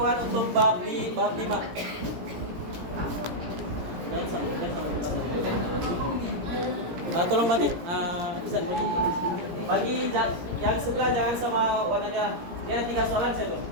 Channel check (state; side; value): late; left; 17 ms